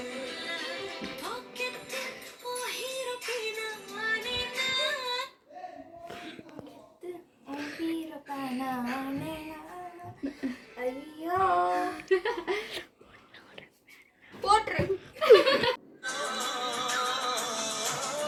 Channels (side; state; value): both; identical; correlation 1.00